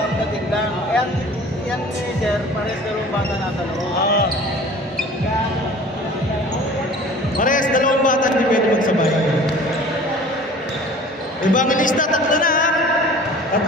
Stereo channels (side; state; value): both; normal; correlation 0.45